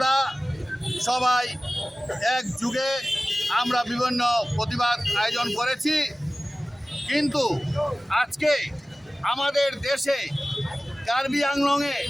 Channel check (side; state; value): both; normal; correlation 0.97